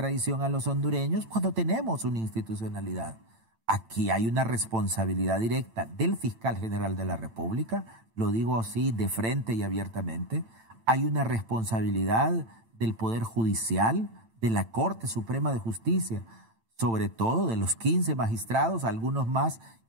a los hondureños cuando tenemos una institucionalidad. Aquí hay una responsabilidad directa del fiscal general de la República, lo digo así de frente y abiertamente. Hay una responsabilidad del Poder Judicial, de la Corte Suprema de Justicia, sobre todo de los 15 magistrados, algunos más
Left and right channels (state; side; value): late; left; 8.9 ms